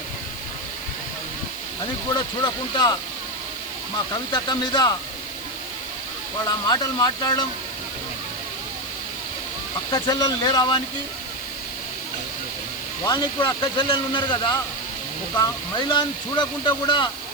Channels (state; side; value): noise; left; hiss, 14 dB below the sound